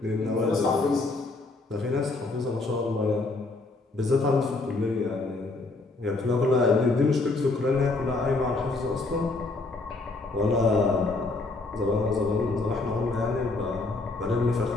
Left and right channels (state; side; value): quieter; right; 3.4 dB